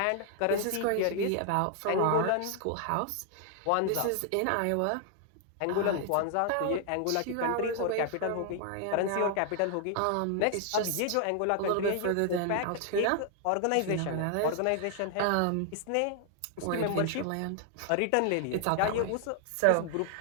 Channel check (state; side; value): different; both; correlation 0.00